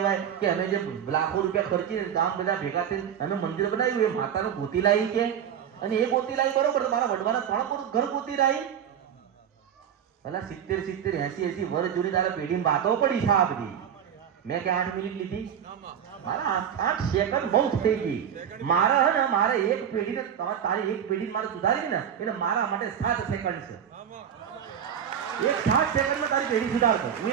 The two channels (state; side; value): quieter; left; 8.8 dB